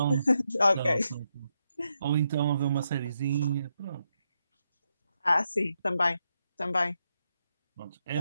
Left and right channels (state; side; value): inverted; both; correlation -0.82